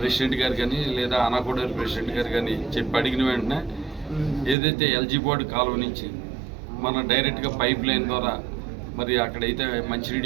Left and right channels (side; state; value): left; drops out; at 4.5 s